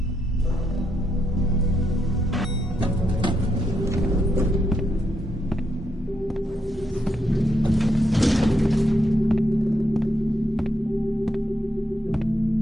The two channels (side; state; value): both; normal; correlation 0.80